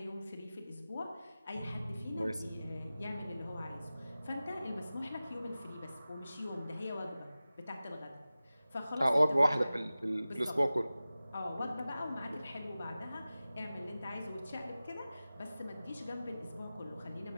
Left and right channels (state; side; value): inverted; both; correlation -0.96